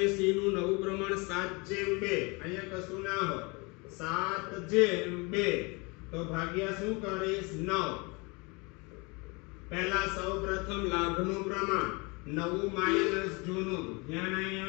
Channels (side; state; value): right; quieter; 28.3 dB